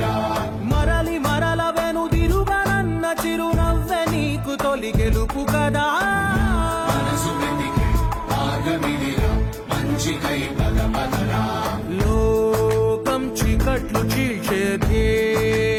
మరలి మరల వెనుదిరుగనన్న చిరునవ్వె నీకు తొలి గెలుపు కదా మనసు వెతికే మార్గమిదిరా మంచికై పదపదరా లోకం చీకట్లు చీల్చే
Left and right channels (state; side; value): identical; both; correlation 1.00